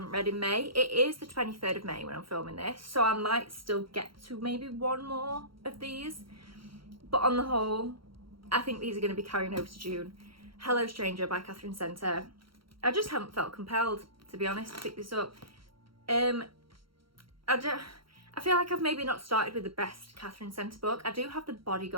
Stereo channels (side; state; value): left; late; 0.74 ms